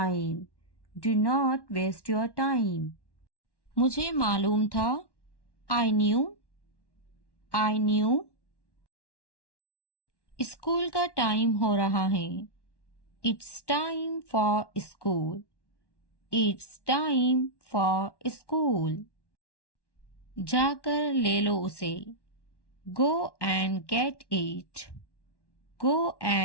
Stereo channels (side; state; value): right; late; 1.1 ms